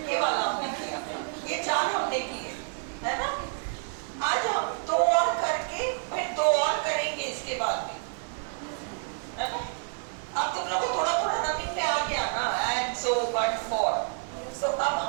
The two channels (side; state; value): left; silent; 59 dB below the other